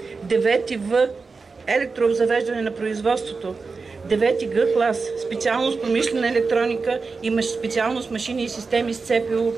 9 В електрообзавеждане на производството. 9-ти Г клас, специалност промишлена електроника и специалност машини и системи с ЦПУ.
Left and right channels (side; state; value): left; quieter; 4.4 dB